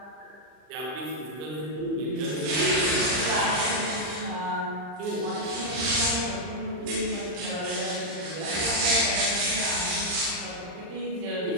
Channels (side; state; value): left; late; 39 ms